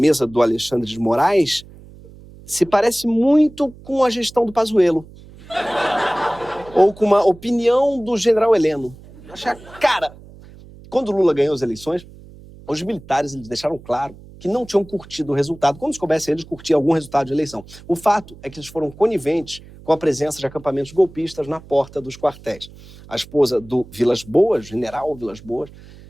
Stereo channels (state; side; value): noise; right; hum, 20 dB below the sound